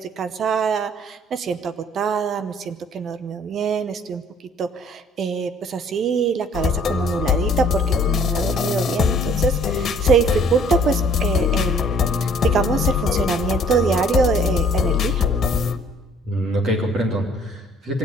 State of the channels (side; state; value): both; normal; correlation 0.57